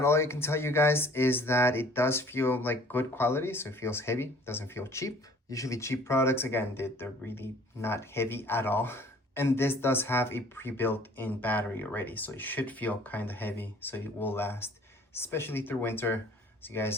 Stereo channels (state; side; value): normal; both; correlation 0.53